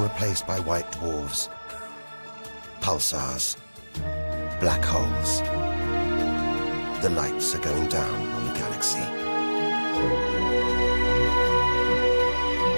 replaced by white dwarfs, pulsars, black holes. The lights are going down on the galaxy.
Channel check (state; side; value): inverted; both; correlation -1.00